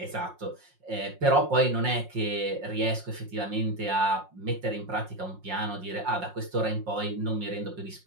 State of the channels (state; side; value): late; left; 5.6 ms